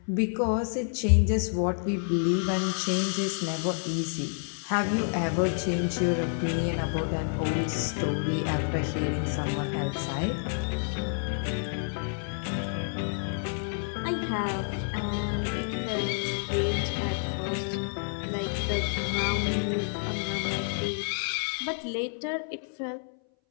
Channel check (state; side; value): silent; right; 59 dB below the other